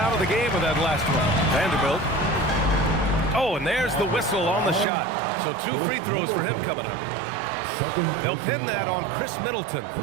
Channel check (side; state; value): left; drops out; at 4.9 s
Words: of the game with that last one. Vanderbilt. Oh, and there's the whistle on the shot. So 2 free throws for him coming up. They'll pin that on Chris Middleton.